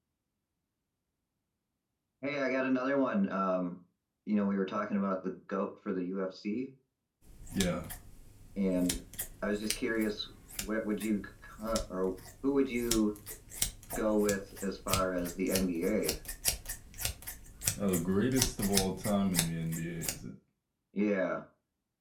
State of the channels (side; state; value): both; identical; correlation 1.00